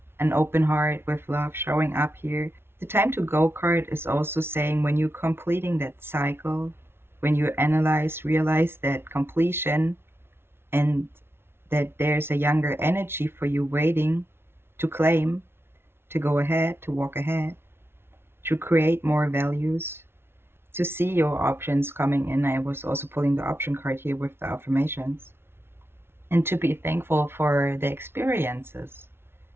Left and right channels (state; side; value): late; left; 0.12 ms